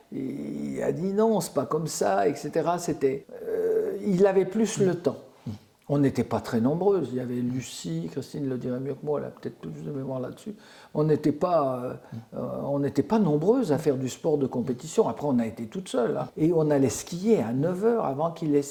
Il a dit non, c'est pas comme ça, etc. Il avait plus le temps. On n'était pas très nombreuses. Il y avait Lucie, Christine le dirait mieux que moi, elle a peut-être plus de mémoire là-dessus. On n'était pas nombreuses à faire du sport de compétition. Après, on a été toutes seules. Hein. Et on allait skier à 9h avant qu'il ait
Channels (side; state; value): both; identical; correlation 1.00